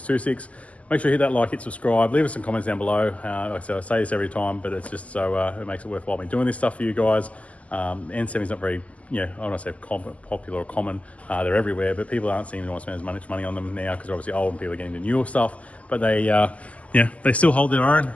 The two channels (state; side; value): late; right; 0.069 ms